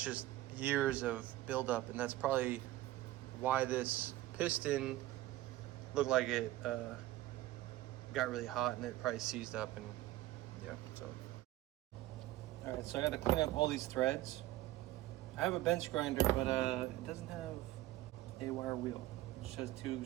just years of buildup, and that's probably why this piston looked like it got really hot and it probably seized up. And yeah, so all right, so I got to clean up all these threads. I have a bench grinder, but it doesn't have a wire wheel. It just has 2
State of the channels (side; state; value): left; quieter; 16.2 dB